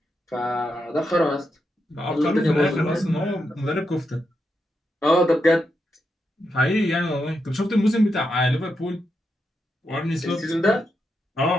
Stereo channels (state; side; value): normal; both; correlation 0.85